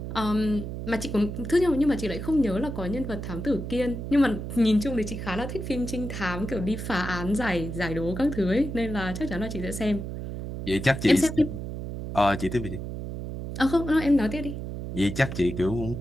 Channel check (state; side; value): noise; right; hum, 7 dB below the sound